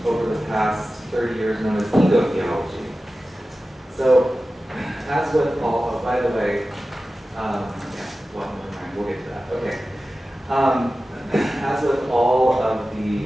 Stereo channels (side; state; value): both; normal; correlation 0.95